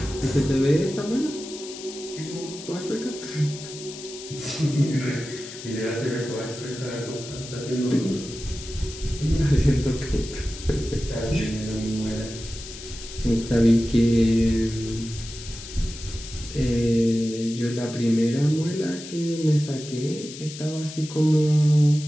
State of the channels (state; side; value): noise; left; hiss, 13 dB below the sound